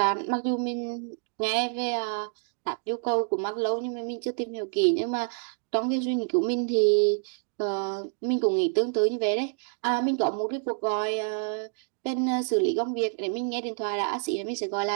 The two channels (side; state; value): left; silent; digital silence